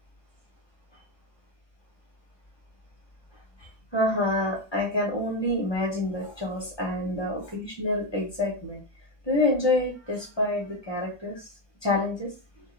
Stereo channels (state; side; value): late; right; 1.2 ms